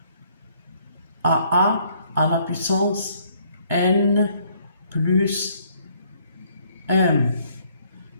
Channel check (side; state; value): both; inverted; correlation -0.65